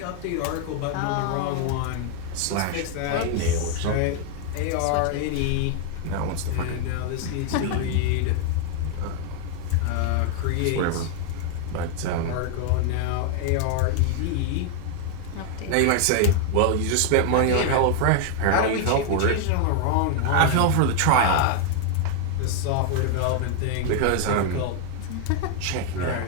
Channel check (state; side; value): different; both; correlation 0.00